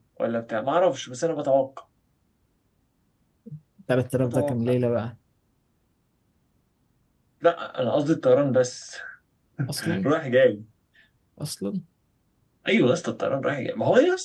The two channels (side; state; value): both; identical; correlation 1.00